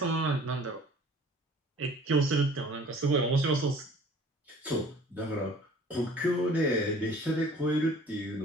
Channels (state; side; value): normal; both; correlation 0.50